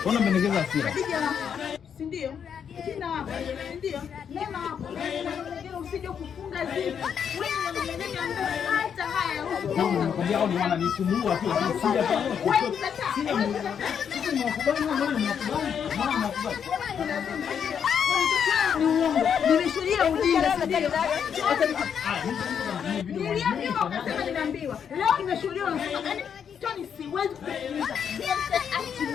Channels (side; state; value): right; quieter; 7.7 dB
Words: Mbona mmenegeza hasira? Si ndio? Sina hapa. Ndio. Neno hapo. Usije kufunga zipo. Wewe unanenea hata haya. Nakwambia hao ni wananisumbua tu lakini sija kwa. Wewe unataka. Sisi tunakubali na wewe unakubali. Mama unakubali. Ni uongo. Nimeshuhudia ujinga ndio. Niliambiwa akasema nimeambiwa. Leo nimeshuhudia unasema yani Tony siwezi kusikiliza. Achi